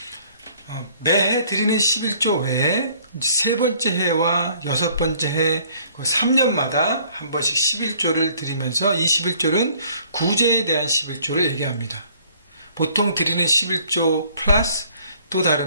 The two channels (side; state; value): both; inverted; correlation -0.58